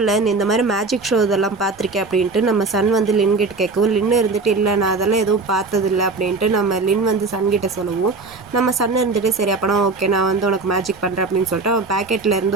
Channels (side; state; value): left; quieter; 3.9 dB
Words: இல்லை நீ இந்த மாதிரி மேஜிக் ஷோ இதெல்லாம் பார்த்துருக்கேன் அப்படின்ட்டு நம்ம சன் வந்து லின்கிட்ட கேட்கவும் லின்னு இருந்துட்டு இல்லை நான் அதெல்லாம் எதுவும் பார்த்ததில்லை அப்படின்ட்டு நம்ம லின் வந்து சன்கிட்ட சொல்லவும் நம்ம சன் இருந்துட்டு சரி அப்போனா ஓகே நான் வந்து உனக்கு மேஜிக் பண்ணுறேன் அப்படின்னு சொல்லிட்டு அவன் பேக்கெட்டில்